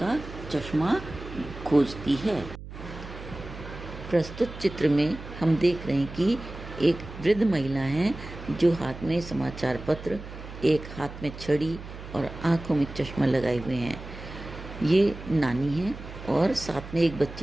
का चश्मा खोजती है। प्रस्तुत चित्र में हम देख रहे हैं कि एक वृद्ध महिला है जो हाथ में समाचार पत्र, एक हाथ में छड़ी और आंखों में चश्मा लगाए हुए हैं। ये नानी है और साथ में एक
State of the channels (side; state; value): right; noise; hum, 12 dB below the sound